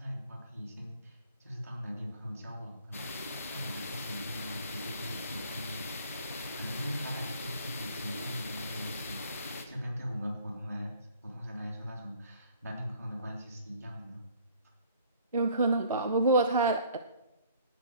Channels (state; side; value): inverted; both; correlation -0.55